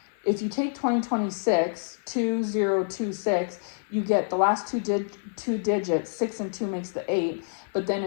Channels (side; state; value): right; silent; 56 dB below the other